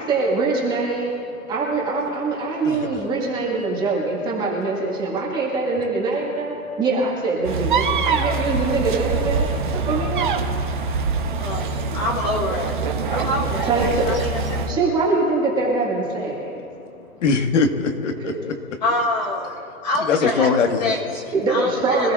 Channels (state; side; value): normal; both; correlation 0.24